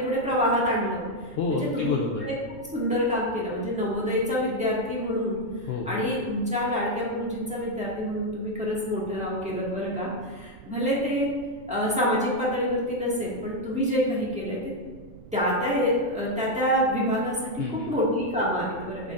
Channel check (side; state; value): right; noise; rumble, 19 dB below the sound